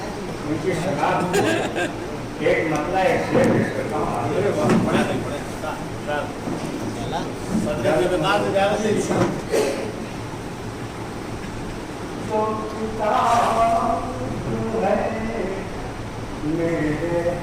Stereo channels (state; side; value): identical; both; correlation 1.00